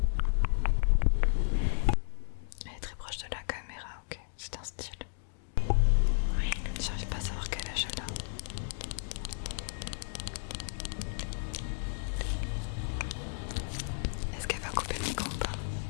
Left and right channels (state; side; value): silent; right; digital silence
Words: Elle est très proche de la caméra, ok, c'est un style. J'arrive pas à savoir quel âge elle a. Est-ce qu'elle va couper le micro ou pas?